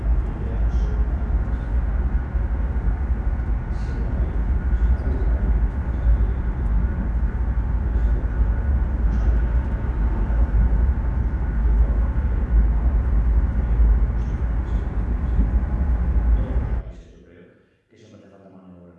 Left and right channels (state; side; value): identical; both; correlation 1.00